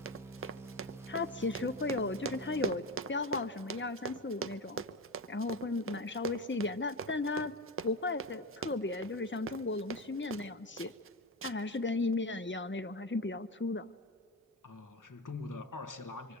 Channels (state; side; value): normal; both; correlation 0.20